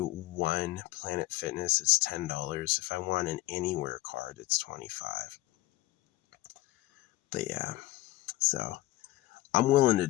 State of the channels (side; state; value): right; quieter; 17.8 dB